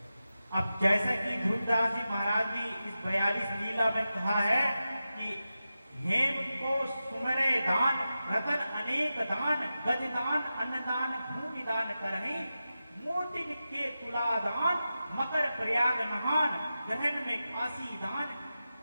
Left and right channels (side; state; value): both; inverted; correlation -0.92